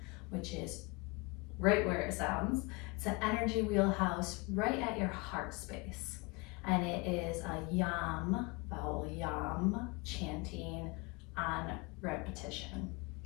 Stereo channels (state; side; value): quieter; right; 27.2 dB